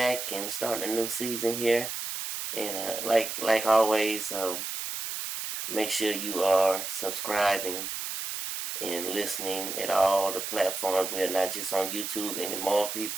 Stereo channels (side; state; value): right; noise; hiss, 5 dB below the sound